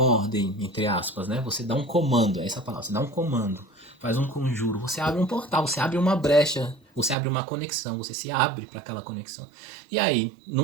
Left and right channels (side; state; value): left; drops out; at 7.2 s